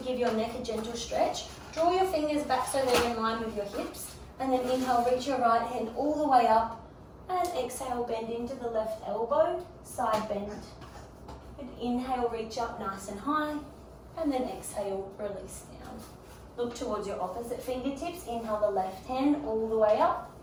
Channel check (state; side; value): identical; both; correlation 1.00